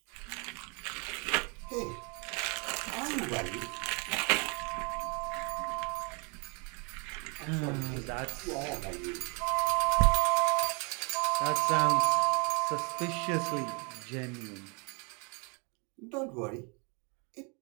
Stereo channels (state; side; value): quieter; left; 33.2 dB